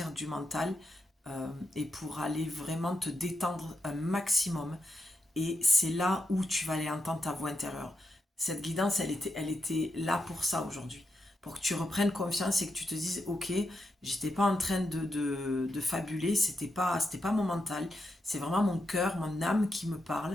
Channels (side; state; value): both; normal; correlation 0.84